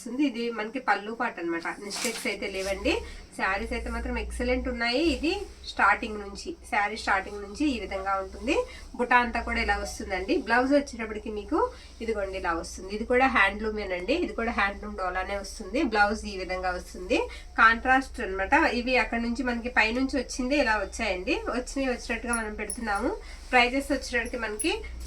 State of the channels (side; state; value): both; identical; correlation 1.00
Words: ఇది మనకి పళ్ళు పాట అనమాట. మిస్టేక్స్ అయితే లేవండి. శారీస్ అయితే మాత్రం ఎక్సలెంట్ ఉన్నాయి. ఇది స్టార్టింగ్ నుంచి, శారీ స్టార్టింగ్ నుంచి ఈ విధంగా ఉంటుంది. బుటా అంతా కూడా ఇలా వస్తుందండి. బ్లౌజ్ వచ్చేటప్పటికి మీకు ఇదిగోండి ఇలా వస్తుంది. ఇది కూడా హ్యాండ్లూమేనండి. ఇది కూడా హ్యాండ్లూమ్ డోలానే వస్తుంది. బ్లౌజ్ ఈ విధంగా వస్తుంది. కాంట్రాస్ట్ అనమాట. ఇవి అక్కడ నుంచి మనకి పైనుంచి వచ్చింది ఇలా వచ్చాయండి. వచ్చినట్టుగా మనం పెడుతున్నాము. ప్రైజెస్ వచ్చేటప్పటికి మనకి